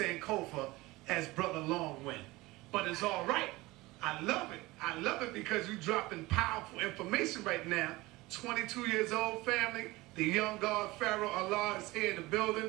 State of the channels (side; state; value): left; quieter; 20.7 dB